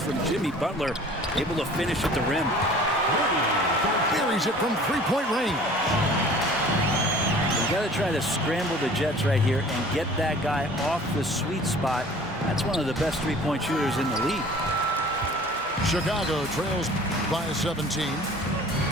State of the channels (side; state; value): both; normal; correlation 0.47